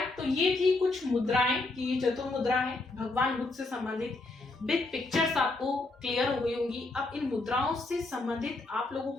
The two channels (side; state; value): right; quieter; 3.1 dB